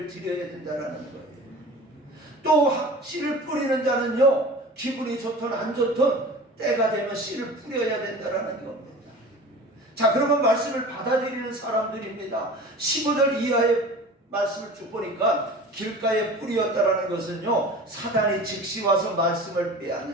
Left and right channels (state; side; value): normal; both; correlation 0.38